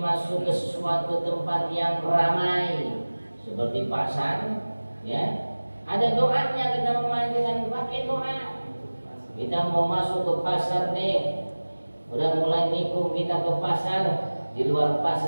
masuk ke sesuatu tempat yang ramai seperti pasar, ya, ada doanya. Kita mama ajengan pakai doa. Kita mau masuk ke pasar nih, udah mulai nikung kita ke pasar, di luar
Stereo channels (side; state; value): both; inverted; correlation -1.00